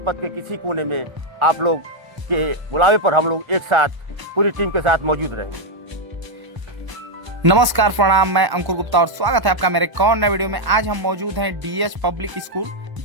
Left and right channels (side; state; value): left; late; 1.0 ms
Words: के किसी कोने में आप लोग के बुलावे पर हम लोग एक साथ पूरी टीम के साथ मौजूद रहेंगे। नमस्कार, प्रणाम। मैं अंकुर गुप्ता और स्वागत है आपका मेरे एक और नए वीडियो में। आज हम मौजूद हैं डीएस पब्लिक स्कूल